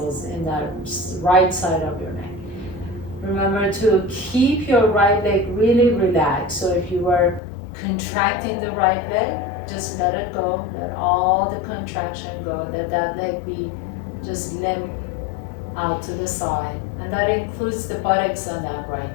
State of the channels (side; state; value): right; drops out; at 7.4 s